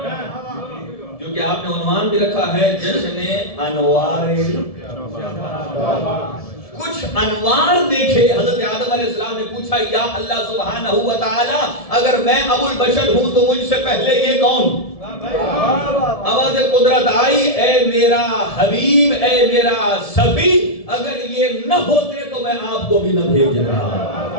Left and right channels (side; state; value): right; late; 1.7 ms